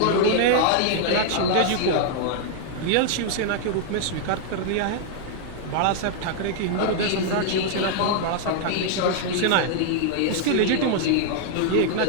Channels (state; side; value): different; both; correlation 0.00